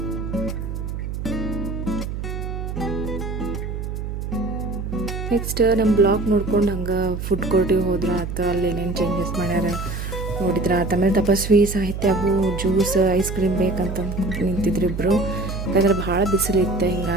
ನೆಕ್ಸ್ಟ್ ನಮ್ಮ ಬ್ಲಾಕ್ ನೋಡ್ಕೊಂಡು ಹಂಗೆ ಫುಡ್ ಕೋರ್ಟಿಗೆ ಹೋದ್ರೆ ಆತ, ಅಲ್ಲಿ ಏನೇನು ಚೇಂಜಸ್ ಮಾಡ್ಯಾರ ನೋಡಿದ್ರ. ಆಮೇಲೆ ತಪಸ್ವಿ ಸಾಹಿತ್ಯಗೂ ಜ್ಯೂಸ್ ಐಸ್ ಕ್ರೀಮ್ ಬೇಕಂತ ನಿಂತಿದ್ರು ಇಬ್ಬರು, ಯಾಕಂದ್ರೆ ಭಾಳ ಬಿಸಿಲಿತ್ತು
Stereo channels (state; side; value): noise; right; hum, 5 dB below the sound